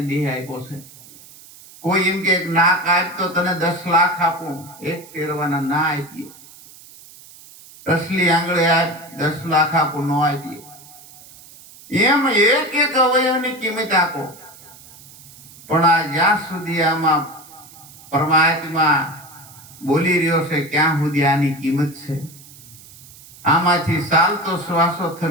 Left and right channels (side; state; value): right; noise; hiss, 21 dB below the sound